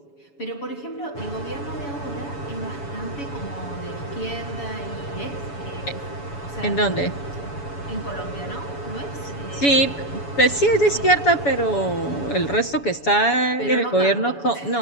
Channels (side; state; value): right; late; 7.0 ms